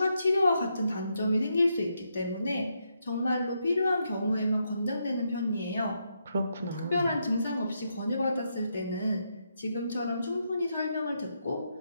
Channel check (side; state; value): both; inverted; correlation -0.81